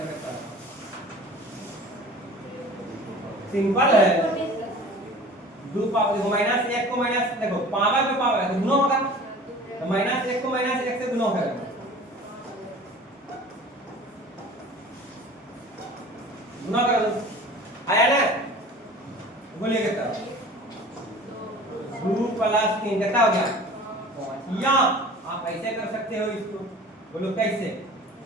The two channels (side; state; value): both; normal; correlation 0.42